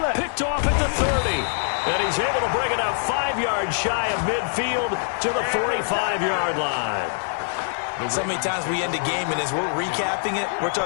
Picked off at the 30. And he's able to bring it out 5 yards shy of midfield to the 45-yard line. So many times we end a game, and as we're recapping it, we're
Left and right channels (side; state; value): right; silent; digital silence